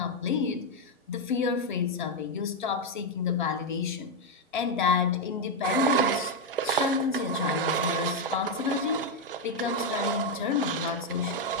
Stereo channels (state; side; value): normal; both; correlation 0.03